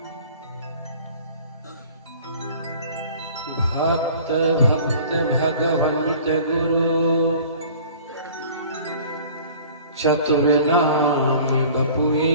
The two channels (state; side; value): inverted; both; correlation -0.47